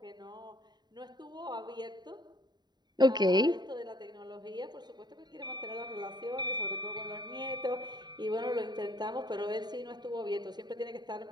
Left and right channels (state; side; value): late; left; 0.20 ms